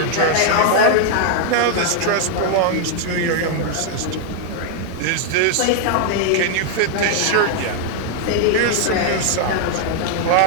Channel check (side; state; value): both; different; correlation 0.00